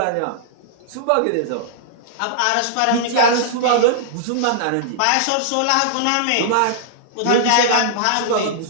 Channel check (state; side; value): different; both; correlation -0.02